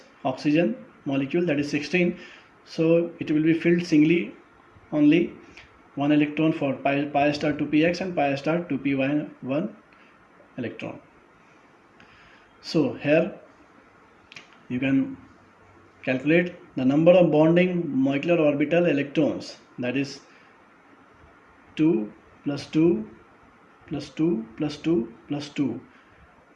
oxygen molecule, that is 16, so it will be filled singly, only 1 electron for pi star 2px and pi star 2py1 electron. So here you can calculate the number of bonding molecular orbital electrons, that is 2 plus 2 plus 2 plus 2 plus 2,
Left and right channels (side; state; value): both; identical; correlation 1.00